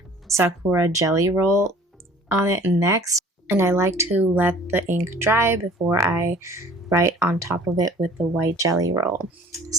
Sakura jelly roll on it next, and I like to let the ink dry before I write on top of it with the white jelly roll.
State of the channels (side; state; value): both; normal; correlation 0.50